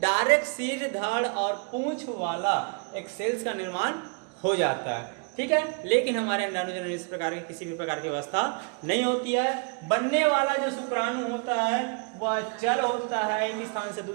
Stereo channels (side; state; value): left; quieter; 33.9 dB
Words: सिर, धड़ और पूंछ वाला एक सेल्स का निर्माण हो जाता है। ठीक है, लेकिन हमारे अंडाणु जनन इस प्रकार की किसी भी प्रकार की अवस्था नहीं होती है। बनने वाला जो शुक्राणु होता है वह चल होता है, एक स्थान से